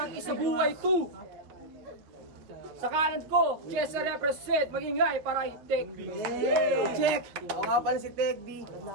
Isabuhay 2. Sa kanan ko, Chesa represent, magingay para kay Tech B. Check! Ako nga pala si Tech B,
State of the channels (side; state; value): left; late; 9.1 ms